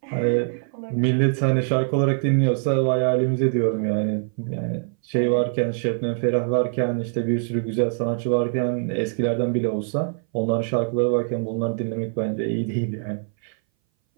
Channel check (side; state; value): left; silent; 60 dB below the other